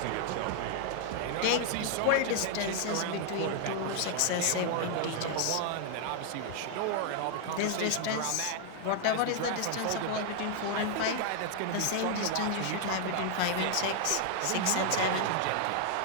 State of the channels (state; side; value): different; both; correlation 0.00